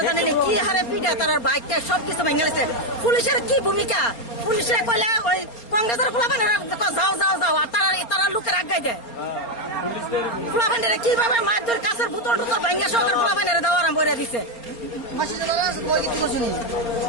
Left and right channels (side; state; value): right; late; 4.3 ms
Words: জানেনি কি হারে পিঠা তার বাইকটা সবকিছু ভেঙে গেছে। পুলিশের কি ভূমিকা? পুলিশে কইলে ওই কংগ্রেসের পোলাবেন যাও যাও যাও, আর তারা লোকের আগাই দেয়। পোলাবেন কিভাবে মারধর কাছের বোতল টোতল ভেঙে সহকার পোলাবেন দেওয়া আরম্ভ করে দিচ্ছে।